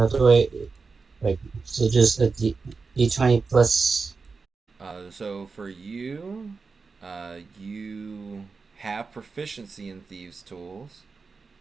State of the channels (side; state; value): left; quieter; 4.6 dB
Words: do I like? So just a D20 plus. So for you, you have proficiency in thieves' tools.